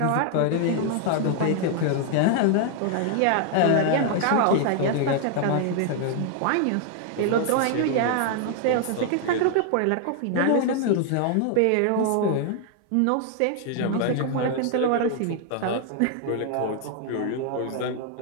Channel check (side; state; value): both; different; correlation 0.00